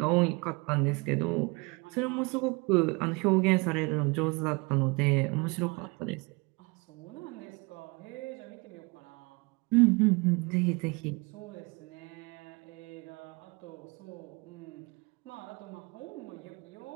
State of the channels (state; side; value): quieter; left; 28.3 dB